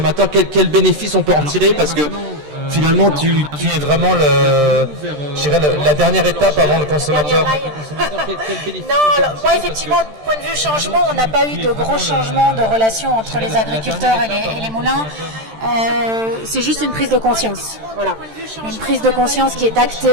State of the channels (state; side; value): late; left; 13 ms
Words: quel bénéfice on peut en tirer, parce que finalement tu es vraiment la dernière étape avant le consommateur. Non, alors, moi effectivement, du point de vue changement, on n'a pas eu de gros changements de relation entre les agriculteurs et les moulins. C'est juste une prise de conscience. Voilà. Une prise de conscience qui est